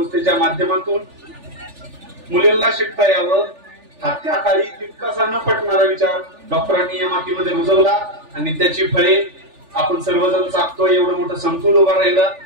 माध्यमातून मुलींना शिकता यावं हा त्या काळी तितकासा न पटणारा विचार डॉक्टरांनी या मातीमध्ये रुजवला आणि त्याची फळे आपण सर्वजण चाकतोय. एवढं मोठं संकुल उभा राहिलं.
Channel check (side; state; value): left; late; 3.4 ms